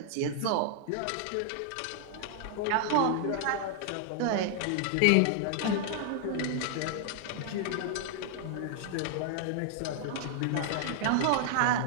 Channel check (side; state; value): both; different; correlation 0.00